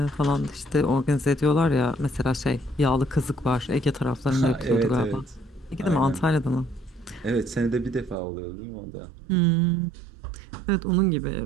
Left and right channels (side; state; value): left; drops out; at 8.2 s